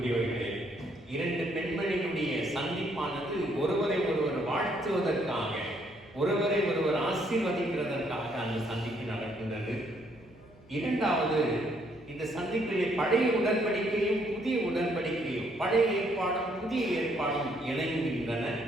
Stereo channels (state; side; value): noise; right; hum, 26 dB below the sound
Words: இரண்டு பெண்மணிகளுடைய சந்திப்பானது ஒருவரை ஒருவர் வாழ்த்துவதற்காக, ஒருவரை ஒருவர் ஆசீர்வதிக்கிறதற்காக அந்த சந்திப்பு நடக்கின்றது. இரண்டாவது, இந்த சந்திப்பிலே பழைய உடன்படிக்கையும் புதிய உடன்படிக்கையும், பழைய ஏற்பாடும் புதிய ஏற்பாடும் இணைகின்றன.